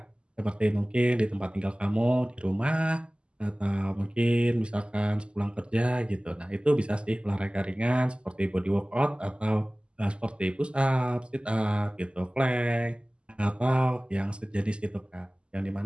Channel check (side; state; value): left; late; 0.051 ms